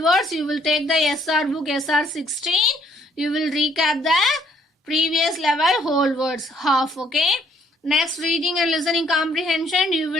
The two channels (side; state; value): both; normal; correlation 0.65